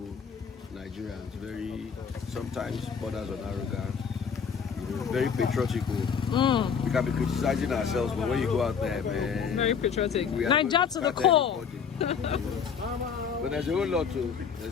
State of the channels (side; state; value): right; quieter; 6.6 dB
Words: Nigerians, very sometimes borders on arrogance, you know, very patriotical. We can be criticizing ourselves, but when you go out there, man, Very patriotic. we are Niger to the core. everybody. But there's a whole lot too.